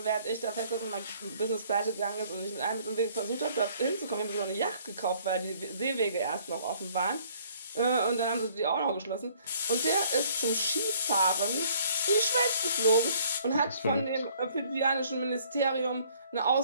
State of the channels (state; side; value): inverted; both; correlation -0.60